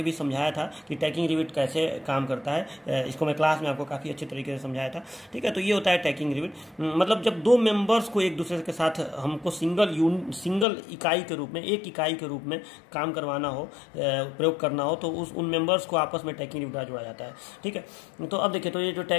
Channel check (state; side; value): drops out; right; at 10.7 s